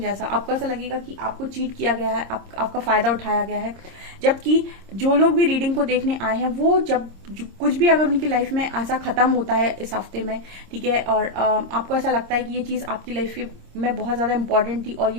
आपको ऐसा लगेगा कि आपको चीट किया गया है, आपका फायदा उठाया गया है। जबकि जो लोग भी रीडिंग को देखने आए हैं वो जब कुछ भी अगर उनकी लाइफ में ऐसा खत्म होता है इस हफ्ते में, ठीक है, और आपको ऐसा लगता है कि ये चीज आपकी लाइफ में बहुत ज्यादा इंपॉर्टेंट थी और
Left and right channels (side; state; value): left; late; 26 ms